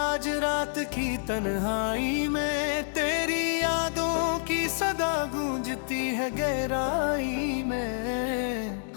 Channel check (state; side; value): silent; right; digital silence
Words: रात की तन्हाई में, तेरी यादों की सदा गूंजती है गहराई में।